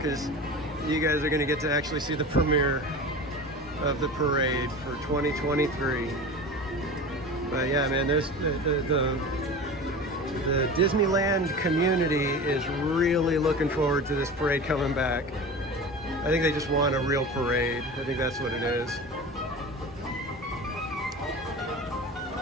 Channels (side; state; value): both; normal; correlation 0.32